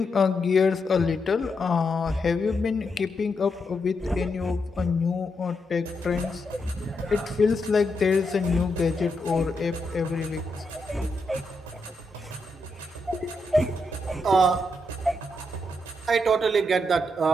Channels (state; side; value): normal; both; correlation 0.82